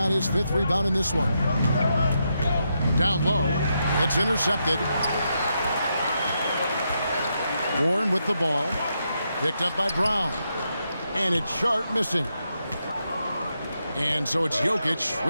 his 5th rebound in this one. Down low. It's intercepted. Warren with the ball. Picked up by Brown. And it's Sharp missing. And so it's Jokic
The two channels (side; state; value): both; inverted; correlation -0.82